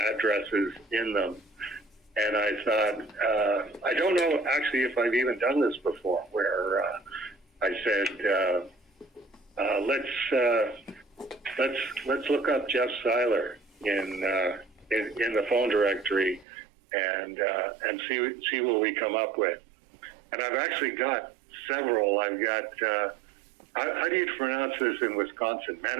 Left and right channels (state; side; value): drops out; left; at 16.4 s